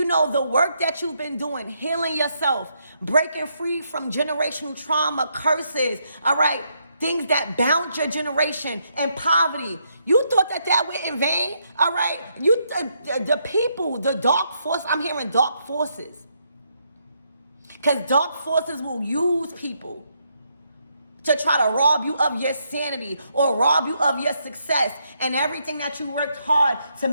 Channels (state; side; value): inverted; both; correlation -0.77